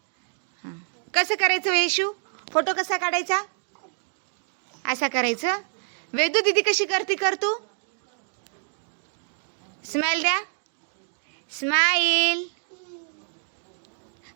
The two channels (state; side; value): silent; left; digital silence